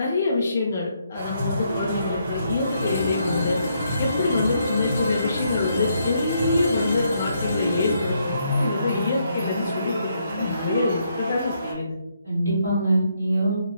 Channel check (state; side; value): inverted; both; correlation -0.75